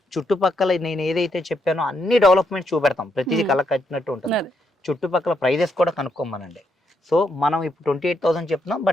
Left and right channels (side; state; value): both; normal; correlation 0.78